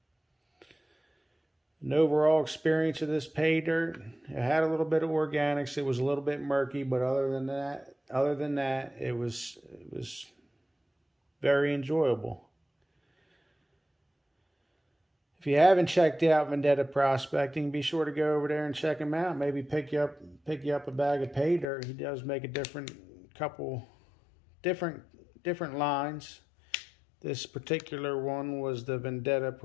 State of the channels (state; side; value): drops out; right; at 21.7 s